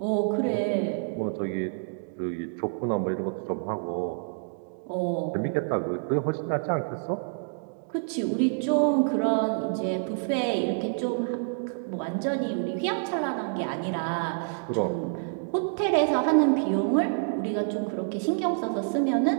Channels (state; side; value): silent; left; digital silence